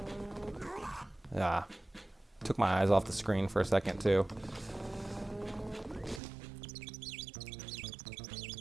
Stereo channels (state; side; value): drops out; left; at 6.2 s